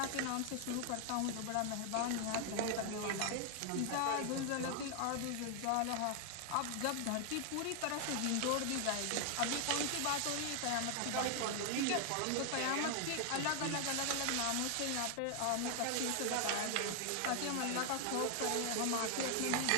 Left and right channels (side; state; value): both; different; correlation 0.00